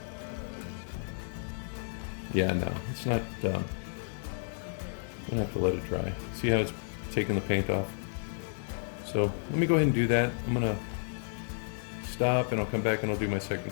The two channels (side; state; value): right; silent; digital silence